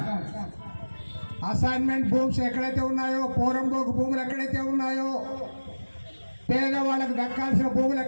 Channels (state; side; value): inverted; both; correlation -1.00